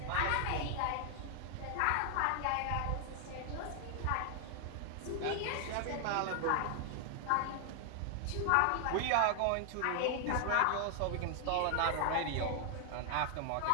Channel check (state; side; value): different; both; correlation 0.00